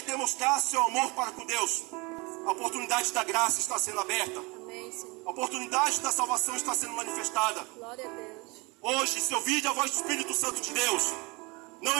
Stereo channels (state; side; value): quieter; left; 26.7 dB